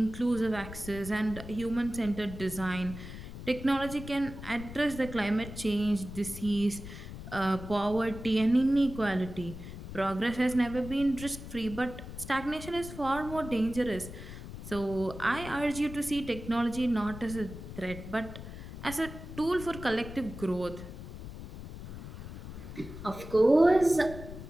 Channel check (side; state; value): left; noise; rumble, 11 dB below the sound